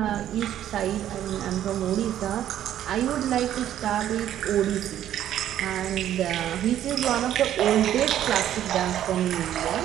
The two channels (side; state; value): left; quieter; 11.5 dB